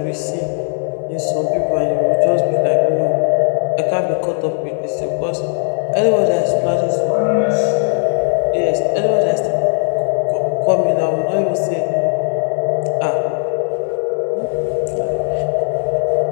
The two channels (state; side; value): silent; right; digital silence